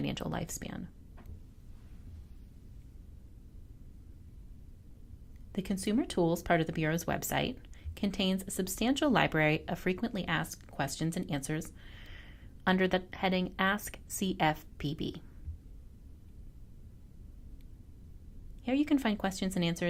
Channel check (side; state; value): both; identical; correlation 1.00